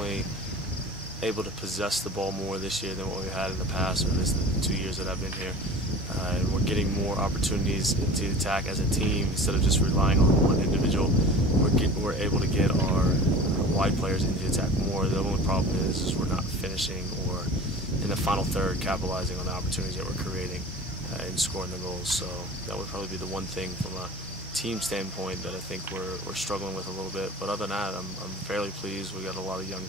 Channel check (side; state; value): both; normal; correlation 0.39